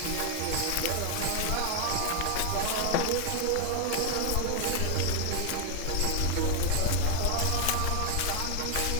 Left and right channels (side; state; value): both; different; correlation 0.00